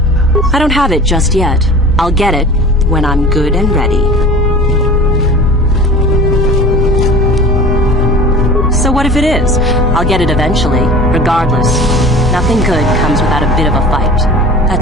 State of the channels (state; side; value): normal; both; correlation 0.39